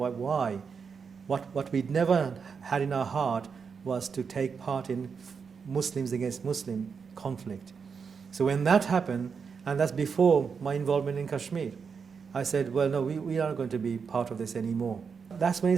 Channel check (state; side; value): quieter; left; 5.9 dB